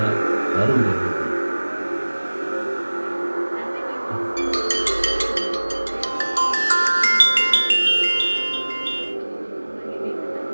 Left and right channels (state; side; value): inverted; both; correlation -1.00